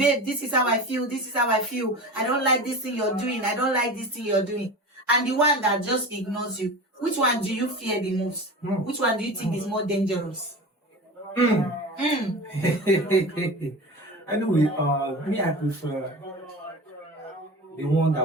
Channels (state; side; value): normal; both; correlation 0.31